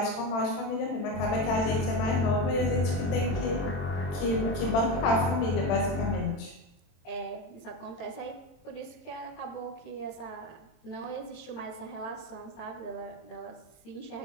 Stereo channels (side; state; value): right; late; 22 ms